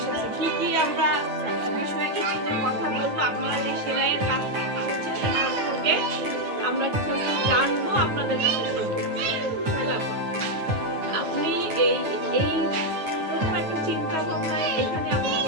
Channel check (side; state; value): left; late; 9.5 ms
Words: কি আমরা বিষয়ে কিছু কথা বলবো, আপনারা যে সেলাইয়ের কাজ করছেন সেই সম্পর্কে আমরা কিছু জানবো, আপনাদের কাছে শুনবো। আপনি এই রকম একটা চিন্তা ভাবনায় এখানে আপনি